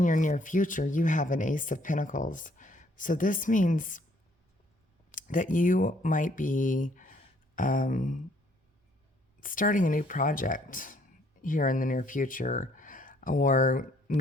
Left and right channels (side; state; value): both; normal; correlation 0.64